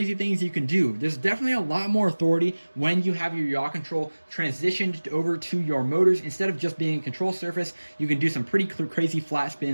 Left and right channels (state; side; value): inverted; both; correlation -1.00